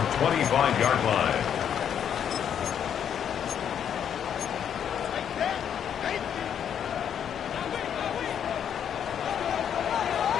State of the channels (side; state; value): right; quieter; 8.8 dB